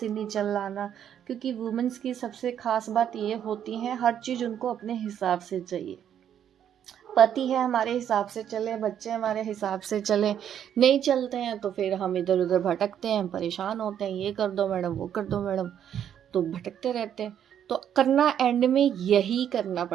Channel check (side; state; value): left; quieter; 9.5 dB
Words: नहीं चलाना। क्योंकि वुमेन्स की सबसे खास बात ये होती है, हर चीज़ उनको अपने हिसाब से चाहिए। पति है हमारे हिसाब से चले, बच्चे हमारे हिसाब से चले, नहीं चलते हैं तो फिर हम इधर उधर भटकते हैं, परेशान होते हैं, ये कर दो मैडम, वो कर दो मैडम, तो भटकते रहते हैं। तो करना एंड में यही करना